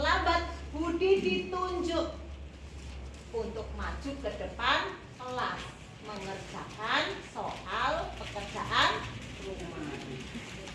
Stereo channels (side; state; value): both; identical; correlation 1.00